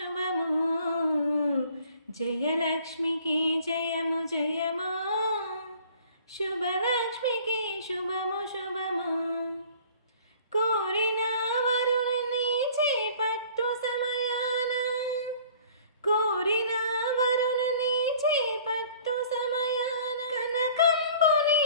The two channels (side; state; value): both; inverted; correlation -0.52